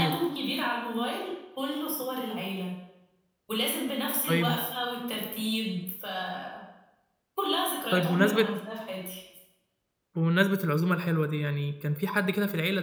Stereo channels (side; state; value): both; identical; correlation 1.00